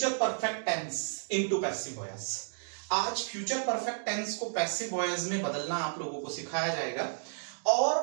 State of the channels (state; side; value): silent; left; digital silence